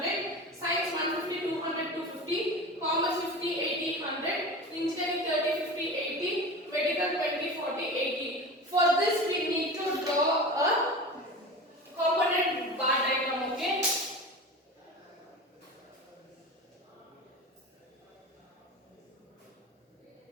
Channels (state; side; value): normal; both; correlation 0.31